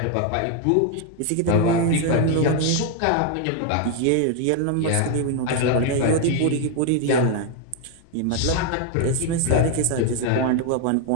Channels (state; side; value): different; both; correlation 0.01